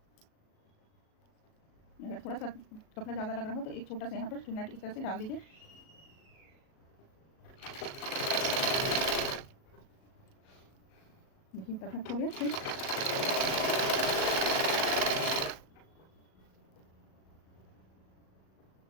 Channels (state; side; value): late; right; 37 ms